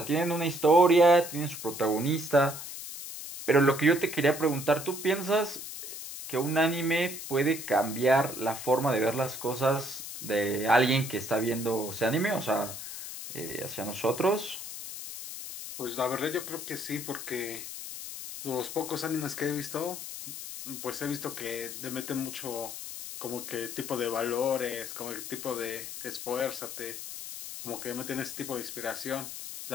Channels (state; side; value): noise; left; hiss, 9 dB below the sound